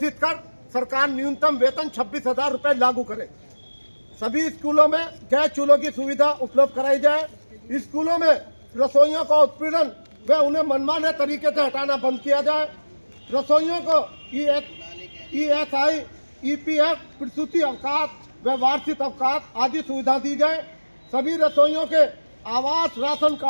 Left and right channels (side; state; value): both; inverted; correlation -1.00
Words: कर सरकार न्यूनतम वेतन 26,000 रुपये लागू करे। सभी स्कूलों में गैस चूल्हों की सुविधा उपलब्ध कराई जाए। स्कूलों में रसोइयों का उत्पीड़न व उन्हें मनमाने तरीके से हटाना बंद किया जाए। रसोइयों को ESI, EPF, प्रसूति अवकाश व वार्षिक अवकाश आदि सुविधा दी जाए। सभी रसोइयों के आवास राशन